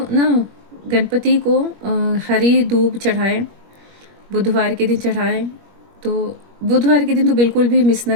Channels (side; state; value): left; late; 21 ms